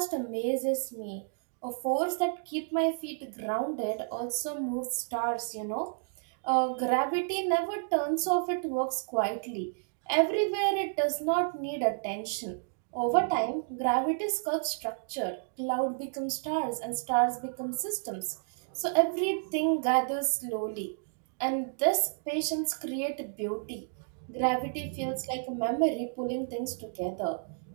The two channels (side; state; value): left; silent; digital silence